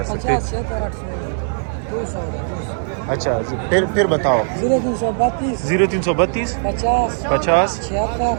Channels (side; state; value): left; silent; digital silence